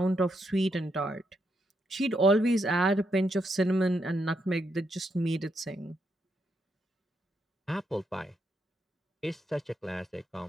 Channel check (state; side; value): normal; both; correlation 0.80